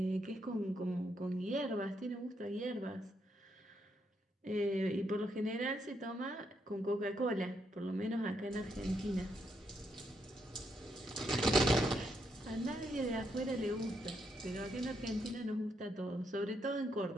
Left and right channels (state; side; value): normal; both; correlation 0.78